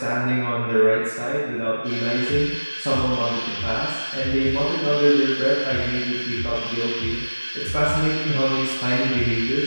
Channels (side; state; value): both; inverted; correlation -1.00